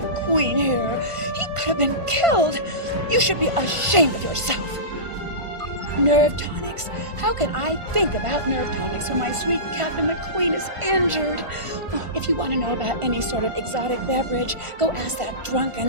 Queen here. He could have been killed. You should be ashamed of yourself. Nerve tonics. How can I think about nerve tonics when my sweet Captain McQueen is injured? Oh, if you want to know about any sort of exotic beverage, go ask that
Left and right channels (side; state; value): left; late; 1.5 ms